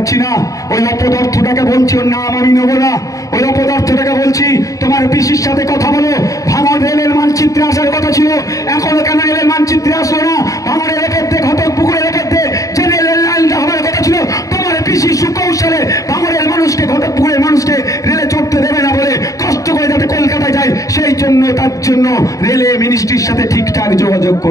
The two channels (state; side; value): late; right; 0.16 ms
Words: না, ওই অপদার্থটাকে বলছি, ওর নাম আমি নেবো না, ওই অপদার্থটাকে বলছি তোমার পিসির সাথে কথা বলো। ভাঙড় রেলের মানচিত্রে আসার কথা ছিল, এখনো কেন রেলের মানচিত্রে আসলো না? ভাঙড়ের রেখে ঘটকপুকুরের রেখে যে রেলের লাইনটা হওয়ার কথা ছিল, তোমার পিসি সুকৌশলে ভাঙড়ের মানুষকে, ঘটকপুকুরের মানুষকে রেলে চড়তে দেবে না বলে কষ্ট করে যাতে কলকাতায় যায়, সেই জন্য তার জন্য রেলে মিনিস্ট্রির সাথে ঠিকঠাক যোগাযোগ